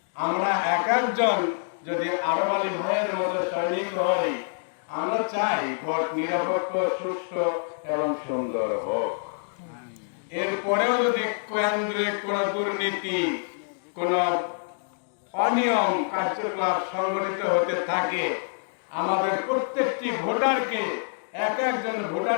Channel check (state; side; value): silent; right; digital silence